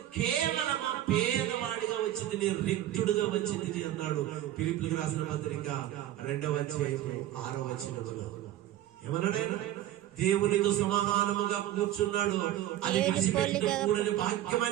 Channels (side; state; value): left; quieter; 13.0 dB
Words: కేవలం పేదవాడిగా వచ్చింది, నేను రిక్తుడుగా వచ్చింది అన్నాడు. ఫిలిప్పీయులకు రాసిన పత్రిక 2వ అధ్యాయం 6వ వచనములో ఏమన్నాడు ఆయన? దేవునితో సమానముగా కూర్చున్నాడు, అది విడిచిపెట్టకూడని